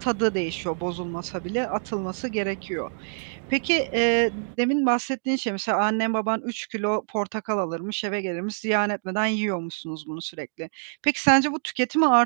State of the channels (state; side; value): silent; left; digital silence